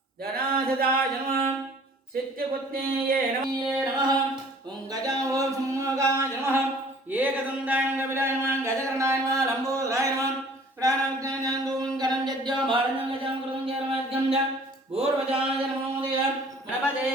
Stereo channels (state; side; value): normal; both; correlation 0.52